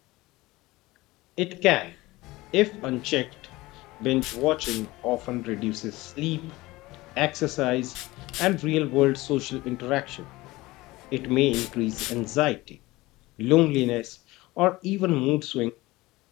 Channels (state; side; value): quieter; right; 19.9 dB